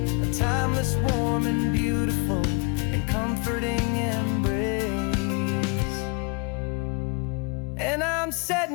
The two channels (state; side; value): quieter; right; 30.6 dB